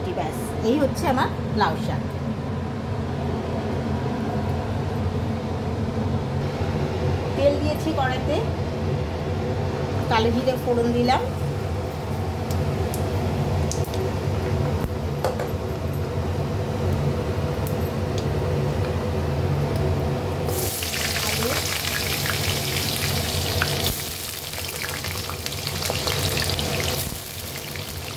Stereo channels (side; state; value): both; identical; correlation 1.00